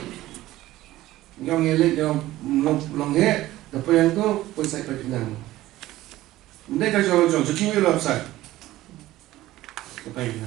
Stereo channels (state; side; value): quieter; left; 16.0 dB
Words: yang ngelik yang longhe, apa yang tu pun saya pengen. Mereka jauh-jauh, jadi ni lah saya, apa pengen,